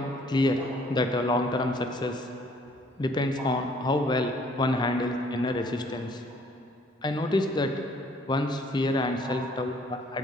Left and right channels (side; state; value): both; normal; correlation 0.60